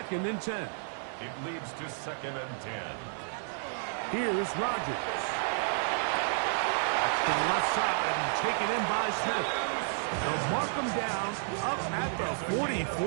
and 10. It leads to 2nd and 10. Here's Rodgers. That's to the left side and taken in by Smith. They'll mark him down up at the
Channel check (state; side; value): silent; left; 57 dB below the other